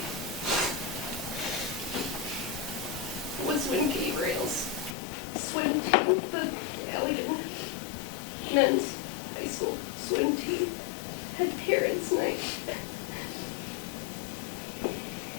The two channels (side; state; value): right; drops out; at 5.0 s